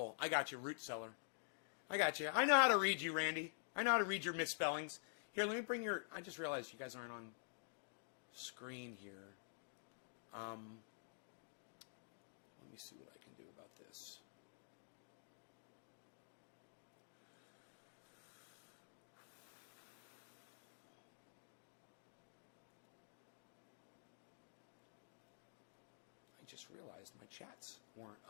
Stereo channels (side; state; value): right; silent; digital silence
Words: I got you, root cellar. I got you. I know how to read you, Randy. I know how to read your misspellings. Here, let me bring your... I just realized you guys aren't on screen here. Let me see what I can do about this. I just realized my chats weren't